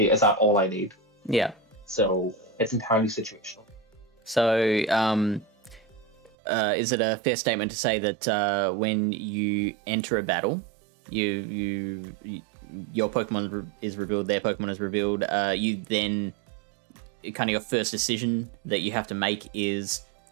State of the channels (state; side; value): drops out; left; at 6.3 s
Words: that all I need? So it's entirely situational. So, is it a fair statement to say that when you enter a battle, your Pokemon is revealed, their Pokemon is revealed, you then, kind of your first decision that you have to make is,